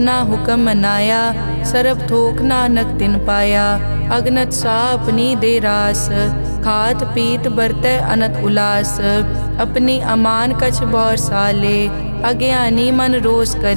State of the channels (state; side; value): inverted; both; correlation -1.00